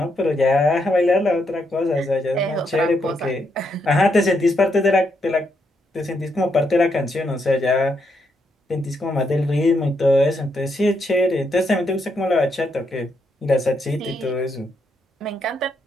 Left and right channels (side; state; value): both; normal; correlation 0.79